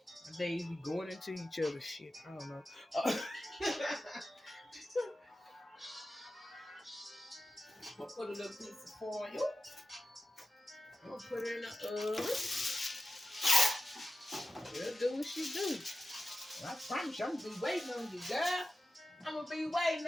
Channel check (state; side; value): normal; both; correlation 0.94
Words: My days be going into each other's shit. I don't know. I'll put a little piece of foil. I'm gonna put her in the oven. She'll do what she do. I promise you, I'm gonna be waiting on you, girl. I'm gonna be waiting